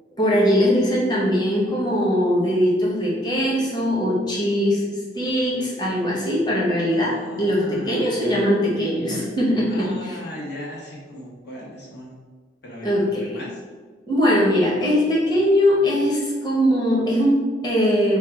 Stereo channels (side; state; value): both; normal; correlation 0.66